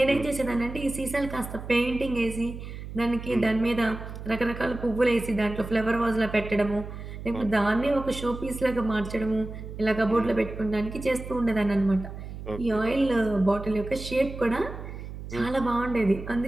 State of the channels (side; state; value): right; noise; hum, 10 dB below the sound